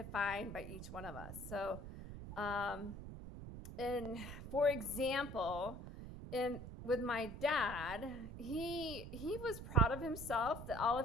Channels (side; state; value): right; noise; rumble, 10 dB below the sound